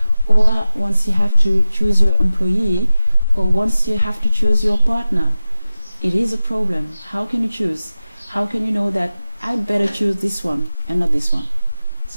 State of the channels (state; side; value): inverted; both; correlation -0.96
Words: or once you have to choose your employee, or once you have to choose your partner, it is a problem. How can you choose? How can you know that I'd better choose this one and not this one?